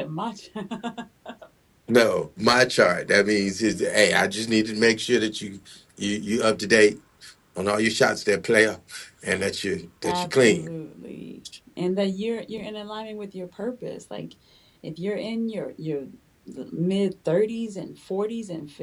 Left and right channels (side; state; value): both; identical; correlation 1.00